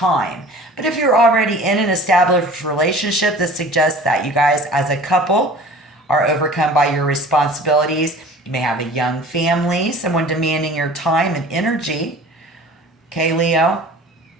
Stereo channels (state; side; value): normal; both; correlation 0.44